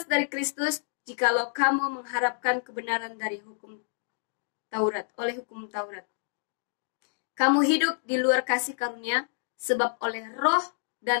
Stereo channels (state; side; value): silent; right; digital silence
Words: dari Kristus jikalau kamu mengharapkan kebenaran dari hukum Taurat, oleh hukum Taurat. Kamu hidup di luar kasih karunia, sebab oleh roh